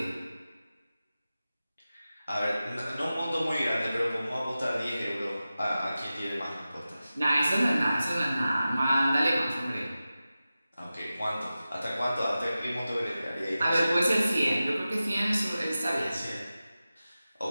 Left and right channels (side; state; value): both; inverted; correlation -0.95